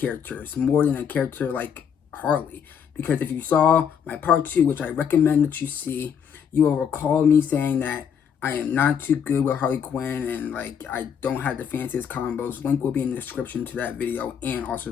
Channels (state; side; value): quieter; right; 7.7 dB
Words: more than a character like Harley. Because if you saw my part 2, which I recommend that you see, you will recall me saying that I am not too good with Harley Quinn and like I don't have the fanciest combos. Link will be in the description to that video and also